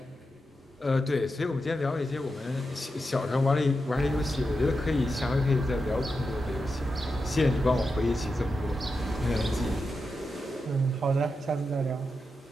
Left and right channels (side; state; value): both; normal; correlation 0.88